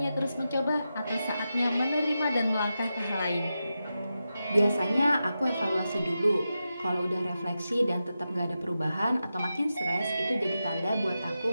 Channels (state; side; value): inverted; both; correlation -0.90